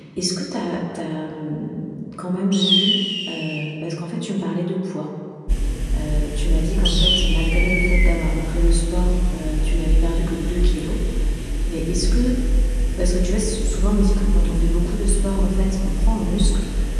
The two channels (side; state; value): both; identical; correlation 1.00